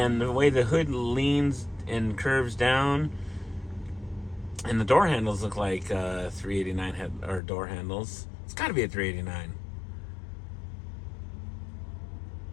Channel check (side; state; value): right; drops out; at 7.4 s